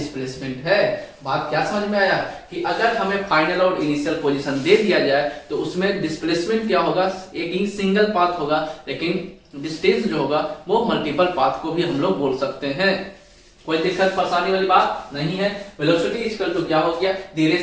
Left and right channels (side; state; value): both; identical; correlation 1.00